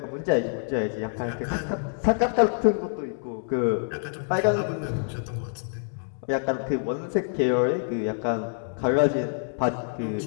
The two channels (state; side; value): silent; right; digital silence